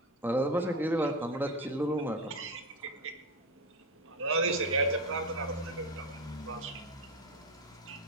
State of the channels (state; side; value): normal; both; correlation 0.18